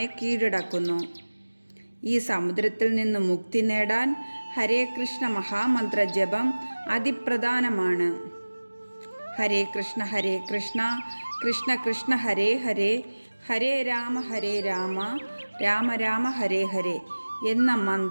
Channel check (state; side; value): inverted; both; correlation -1.00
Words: കീഴടക്കുന്നു. ഈ സമുദ്രത്തിൽ നിന്ന് മുക്തി നേടാൻ ഹരേ കൃഷ്ണ മഹാമന്ത്ര ജപം അതിപ്രധാനമാണ്. ഹരേ കൃഷ്ണ കൃഷ്ണ കൃഷ്ണ ഹരേ ഹരേ, ഹരേ രാമ രാമ രാമ ഹരേ ഹരേ എന്ന